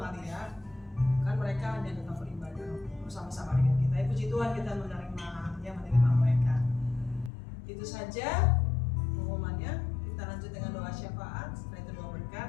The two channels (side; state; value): right; drops out; at 7.3 s